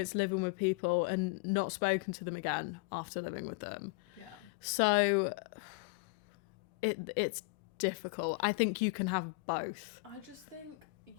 living with people and not spoken to them again after living with them. Yeah. So it's difficult. I think you can have both. I just think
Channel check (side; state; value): right; quieter; 27.0 dB